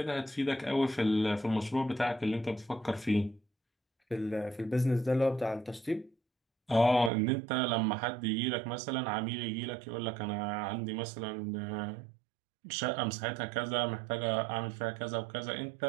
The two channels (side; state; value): left; drops out; at 7.1 s